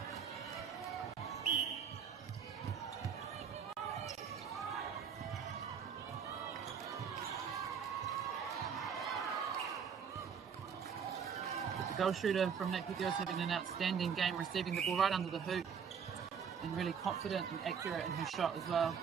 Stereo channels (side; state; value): left; quieter; 7.0 dB